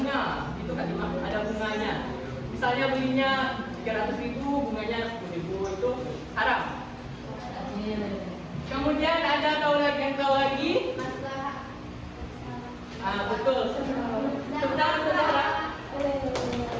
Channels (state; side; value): identical; both; correlation 1.00